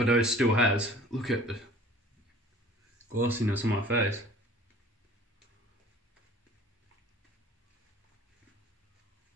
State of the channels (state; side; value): normal; both; correlation 0.48